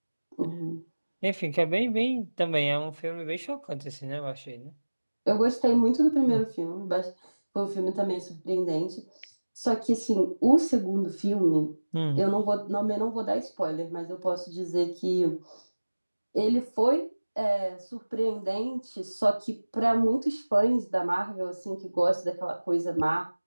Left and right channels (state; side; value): inverted; both; correlation -1.00